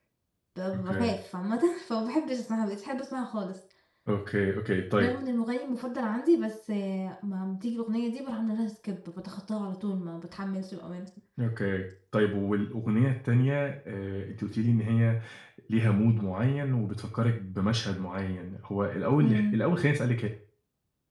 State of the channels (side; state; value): both; identical; correlation 1.00